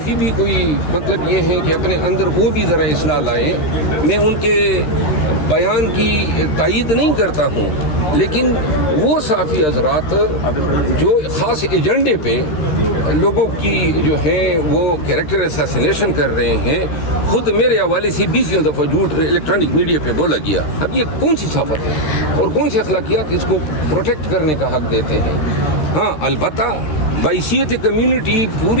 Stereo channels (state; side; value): late; right; 13 ms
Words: بھی کوئی مطلب یہ ہے کہ اپنے اندر وہ بھی ذرا اصلاح لائیں. میں ان کے بیان کی تائید نہیں کرتا ہوں، لیکن وہ صحافی حضرات جو خاص ایجنڈے پہ لوگوں کی جو ہے وہ کیریکٹر اسیسینیشن کر رہے ہیں، خود میرے حوالے سے 20 دفعہ جھوٹ الیکٹرانک میڈیا پہ بولا گیا. اب یہ کون سی صحافت ہے اور کون سی اخلاقیات اس کو پروٹیکٹ کرنے کا حق دیتے ہیں؟ ہاں البتہ بحیثیت کمیونٹی،